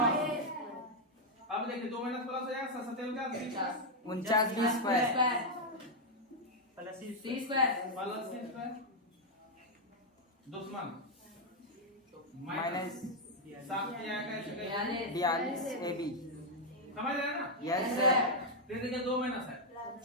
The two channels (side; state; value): both; normal; correlation -0.01